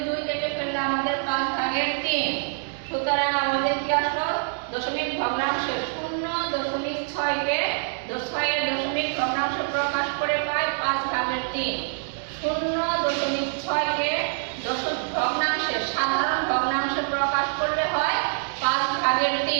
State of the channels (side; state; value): left; silent; 60 dB below the other